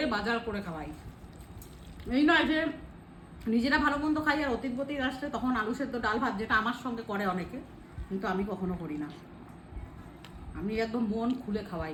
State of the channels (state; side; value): identical; both; correlation 1.00